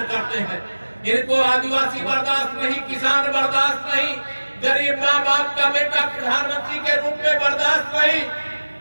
करते हैं। इनको आदिवासी बर्दाश्त नहीं, किसान बर्दाश्त नहीं, गरीब माँ बाप का बेटा प्रधानमंत्री के रूप में बर्दाश्त नहीं।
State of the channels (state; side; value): inverted; both; correlation -1.00